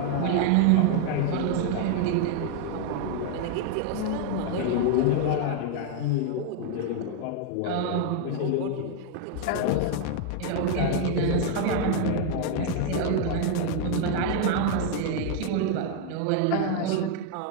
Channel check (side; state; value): both; different; correlation 0.00